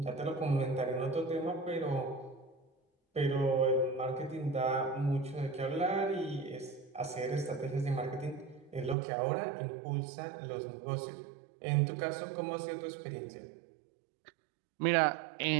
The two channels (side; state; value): left; drops out; at 9.0 s